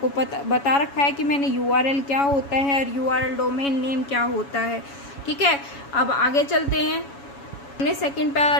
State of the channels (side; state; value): right; late; 7.1 ms